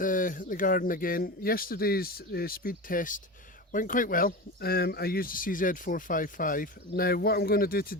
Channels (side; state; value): both; normal; correlation 0.26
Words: garden again. Yesterday's speed test went quite well. I used a CZ452. Now what I'm going to do